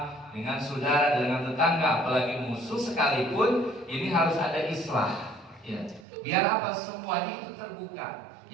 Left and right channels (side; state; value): left; drops out; at 6.1 s